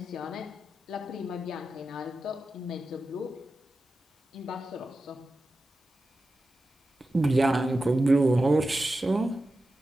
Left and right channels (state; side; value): normal; both; correlation 0.92